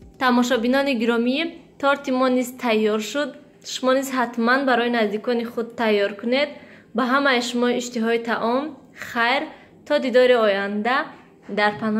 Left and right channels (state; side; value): identical; both; correlation 1.00